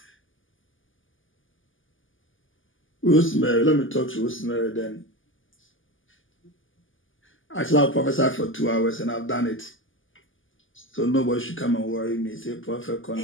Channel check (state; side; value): late; right; 0.58 ms